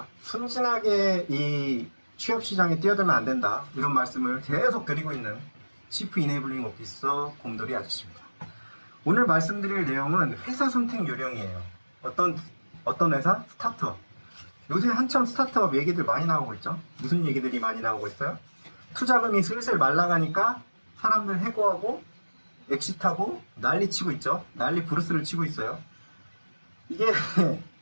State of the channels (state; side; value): inverted; both; correlation -1.00